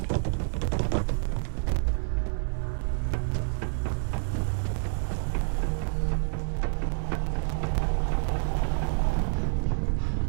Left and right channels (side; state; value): left; silent; 59 dB below the other